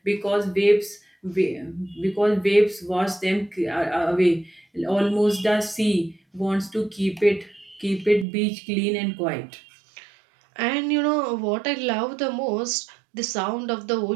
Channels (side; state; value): left; drops out; at 8.2 s